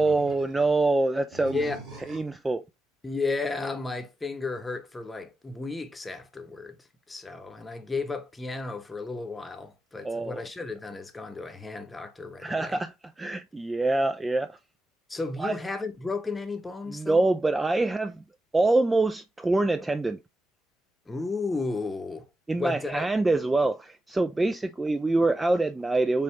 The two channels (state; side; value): normal; both; correlation 0.91